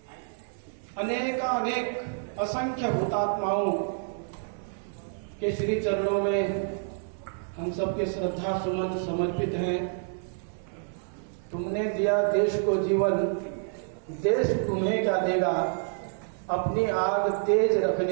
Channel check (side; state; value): left; silent; 59 dB below the other